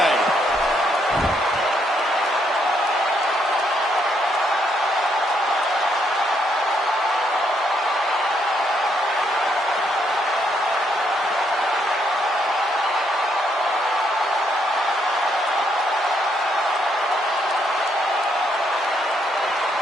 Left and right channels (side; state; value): both; normal; correlation 0.74